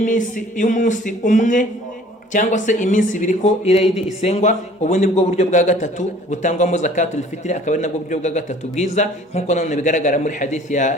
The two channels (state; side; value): normal; both; correlation 0.52